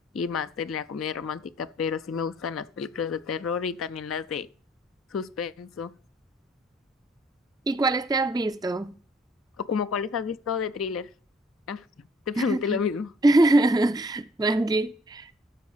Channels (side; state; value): both; normal; correlation 0.61